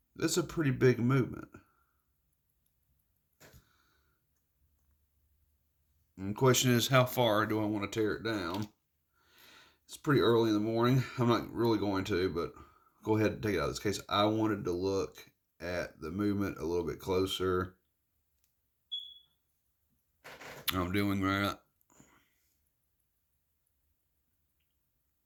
That's a pretty big movement. And the question is, how far do I want to tear it down? It's pretty early in the morning. I'm not really going to, but go ahead and take it out of this case. I wanted to look at the movement a little bit closer. I'm doing that.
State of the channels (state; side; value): identical; both; correlation 1.00